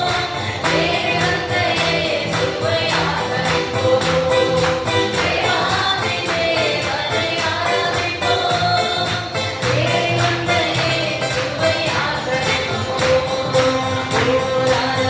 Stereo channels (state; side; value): identical; both; correlation 1.00